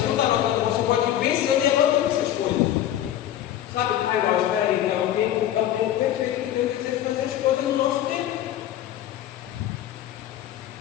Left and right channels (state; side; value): quieter; right; 11.9 dB